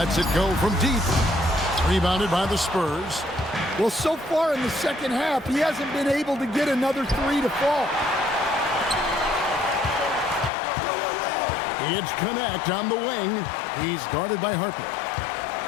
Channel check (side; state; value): right; drops out; at 10.5 s